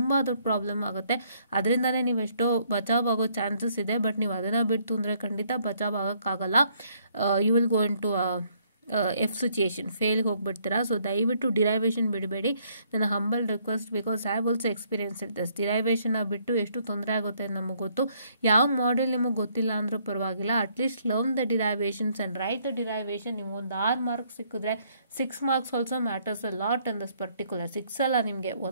ದೊಡ್ಡ ಪ್ರಾಬ್ಲಮ್ ಆಗುತ್ತೆ. ಅದರಿಂದನೇ ನೀವು ಎಷ್ಟೋ ಬಚಾವ್ ಆಗೋ ಚಾನ್ಸಸ್ ಇದೆ, ಬಟ್ ನೀವು ಅದನ್ನು ಬಿಟ್ಟು ಅಂದರೆ ಖಂಡಿತ ಬಚಾವ್ ಆಗೋಕ್ಕಾಗಲ್ಲ. You will go into F situation, ಫೇಲ್ಗೆ ಹೋಗ್ಬಿಡ್ತೀರಾ. ಸೊ ದಯವಿಟ್ಟು ಡಿರೈವೇಷನ್ ಬಿಡಬೇಡಿ. ನನ್ನ humble request, because I have also experience it this. ಡಿರೈವೇಷನ್ನ ಬಿಟ್ಟು ಎಷ್ಟು ತೊಂದರೆ ಆಗುತ್ತೆ ನಮಗೆ ಗೊತ್ತು. ಯಾವ ಮಾಡೆಲ್ ನಿಮಗೆ ಗೊತ್ತಿಲ್ಲ ಅಂದರೂ ಪರವಾಗಿಲ್ಲ, at least learn the derivations and right the derivation. ನಿಮ್ಗೆ ಒಂದು 6 ಮಾರ್ಕ್ಸ್ ಸಿಕ್ಕಿದ್ರೆ 6 marks also matters a lot in this particular. 6 ಅಲ್ಲ, ನಿಮಗೆ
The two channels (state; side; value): inverted; both; correlation -0.67